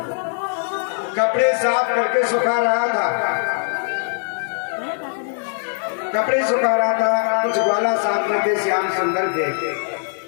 कपड़े साफ करके सुखा रहा था, कपड़े सुखा रहा था। कुछ ग्वाला साफ करके श्याम सुंदर देखे।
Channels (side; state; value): right; silent; 65 dB below the other